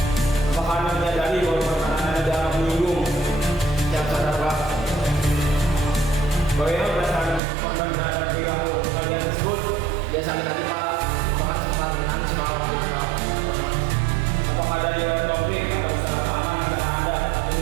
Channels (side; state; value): left; drops out; at 7.4 s